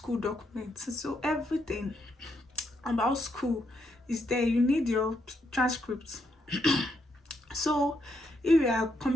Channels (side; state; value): both; normal; correlation 0.78